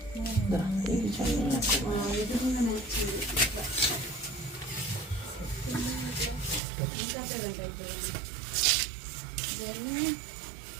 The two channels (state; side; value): drops out; left; at 6.6 s